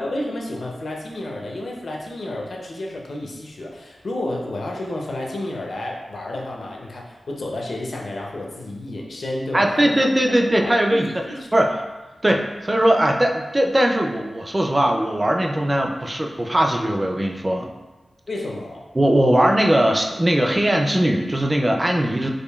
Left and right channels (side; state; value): both; normal; correlation 0.96